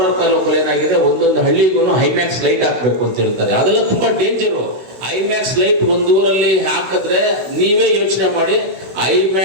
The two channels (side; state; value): left; late; 16 ms